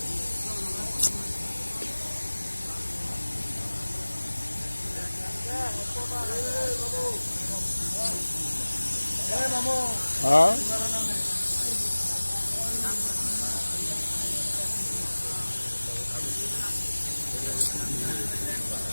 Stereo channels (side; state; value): both; inverted; correlation -1.00